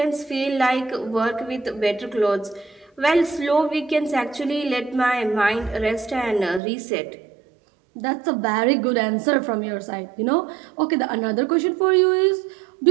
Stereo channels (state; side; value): drops out; left; at 6.6 s